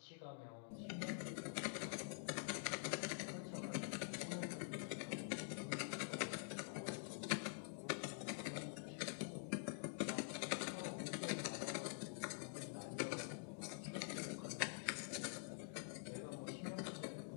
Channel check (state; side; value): silent; right; digital silence